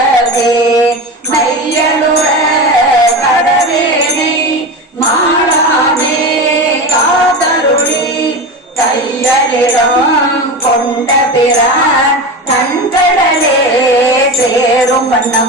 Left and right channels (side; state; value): both; normal; correlation 0.25